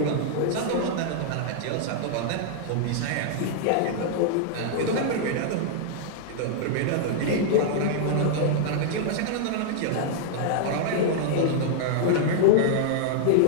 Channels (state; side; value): different; both; correlation -0.01